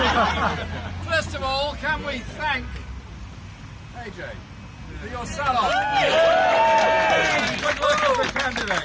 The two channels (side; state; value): both; identical; correlation 1.00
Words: First of all, can we thank AJ for your sell-off? Good luck as a